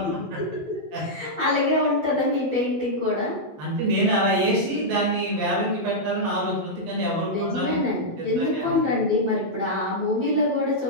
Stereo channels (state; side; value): late; left; 12 ms